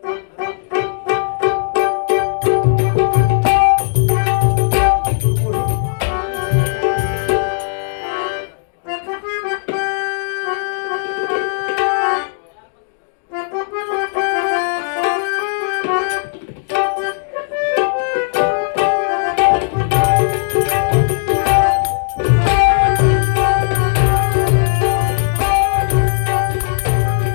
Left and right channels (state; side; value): silent; right; digital silence